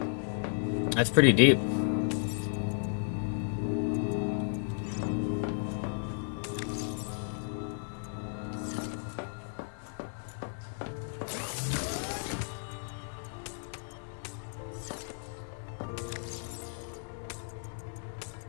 That's pretty deep.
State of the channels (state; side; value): silent; right; digital silence